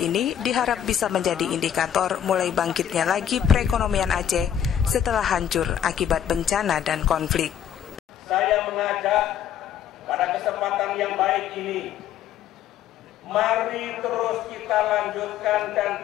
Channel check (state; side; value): quieter; right; 9.8 dB